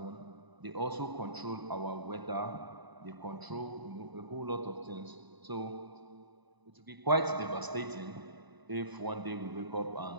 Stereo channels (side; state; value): left; late; 1.0 ms